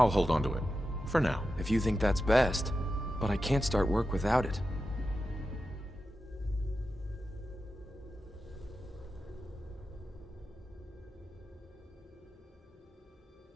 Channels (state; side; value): normal; both; correlation 0.90